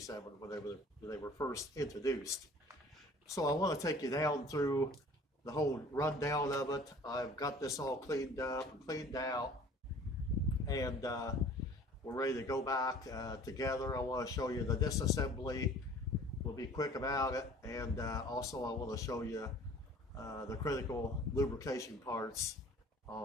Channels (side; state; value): both; normal; correlation 0.49